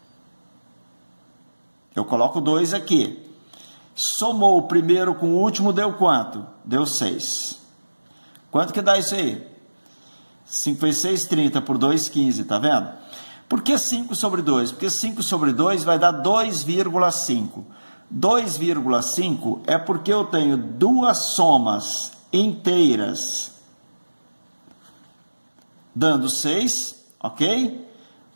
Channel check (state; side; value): inverted; both; correlation -1.00